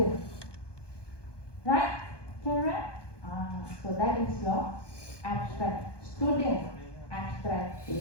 Right? Correct? So that is your abstract student abstract data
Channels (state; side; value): late; right; 1.2 ms